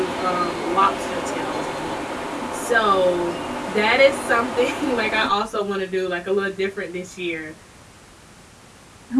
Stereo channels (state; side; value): identical; both; correlation 1.00